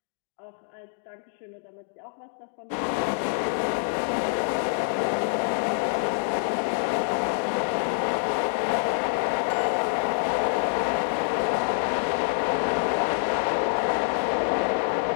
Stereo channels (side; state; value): right; silent; digital silence